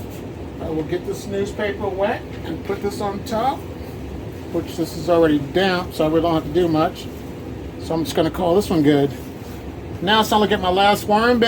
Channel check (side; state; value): both; identical; correlation 1.00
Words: will get this newspaper wet and put this on top, which this is already damp, so I really don't have to do much. So I'm just going to call this one good. Now it's time to get my last worm